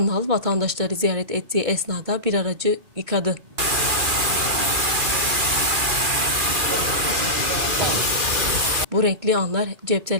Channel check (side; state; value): left; late; 2.4 ms